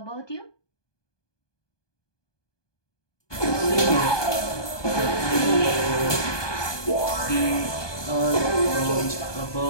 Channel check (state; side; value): late; right; 1.2 ms